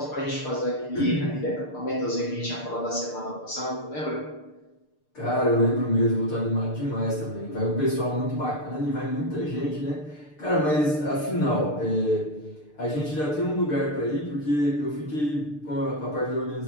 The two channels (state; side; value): late; right; 6.7 ms